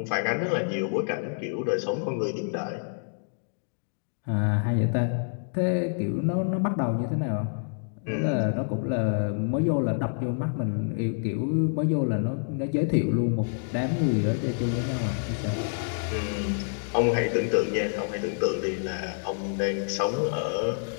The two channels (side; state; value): right; silent; digital silence